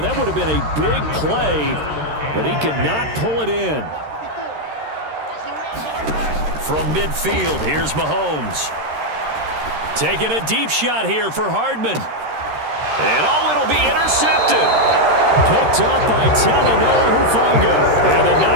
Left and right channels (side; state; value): left; late; 13 ms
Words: That would have been a big play, but he could not pull it in. From midfield, here's Mahomes. Taking a deep shot here for Hardman. And it'll be intercepted. Picked up by Talanoa Hufanga. And the